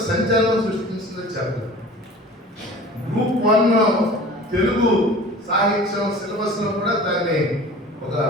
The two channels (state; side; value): normal; both; correlation 0.42